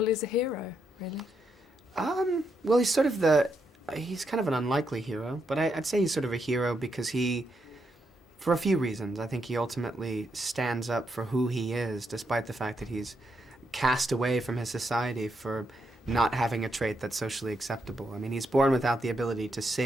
is a hero, really. Well, he's kind of an unlikely hero, but I'd say he's sort of a hero because for a few reasons, I think he ultimately stands up for who he is, despite the fact that he's cast away from his society for not having a trait that's socially acceptable. I mean, he's born without the ability to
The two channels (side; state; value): both; normal; correlation 0.80